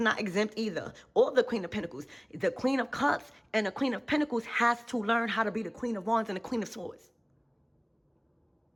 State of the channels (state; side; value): identical; both; correlation 1.00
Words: exempt either, or the Queen of Pentacles. The Queen of Cups and the Queen of Pentacles has to learn how to be the Queen of Wands and the Queen of Swords.